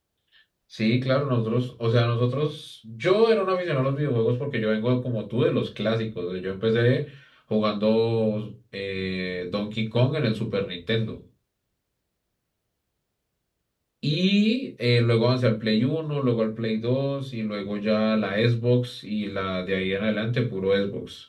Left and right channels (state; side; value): identical; both; correlation 1.00